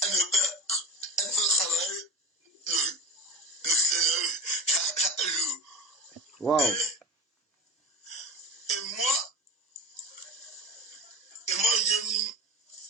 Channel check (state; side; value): normal; both; correlation 0.29